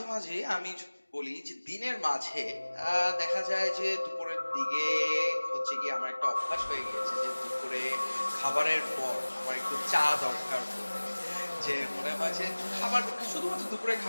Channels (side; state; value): both; inverted; correlation -1.00